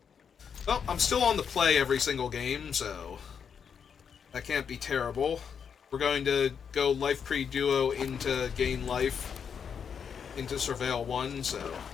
Well, I'm still on the play every single game, so that can't be terrible. We're going to go Life Pre Duo into Gain Life, into Surveil 1, so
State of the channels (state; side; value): quieter; right; 7.0 dB